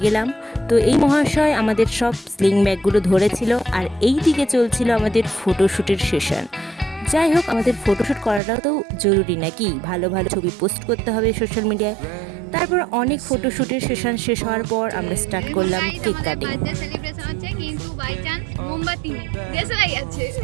গেলাম। তো এই মহাশয় আমাদের সব স্লিং ব্যাগগুলো ধরেছিল, আর এই দিকে চলছিল আমাদের ফটোশ্যুটের সেশন। যাই হোক, আমাদের ফটোশ্যুট করাটাও তো জরুরি নাকি, ভালো ভালো ছবি পোস্ট করতে হবে সোশ্যাল মিডিয়ায়। তারপর অনেক ফটোশ্যুটের সেশন শেষ হওয়ার পর আমরা স্টার্ট করলাম কেক কাটিং। সেলিব্রেশন হচ্ছে কিন্তু বাই চান্স মোমবাতি নেই, দেশলাই আছে।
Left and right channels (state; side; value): drops out; left; at 8.4 s